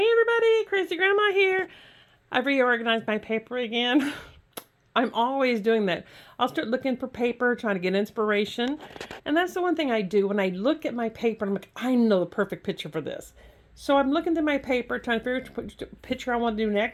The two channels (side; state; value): both; identical; correlation 1.00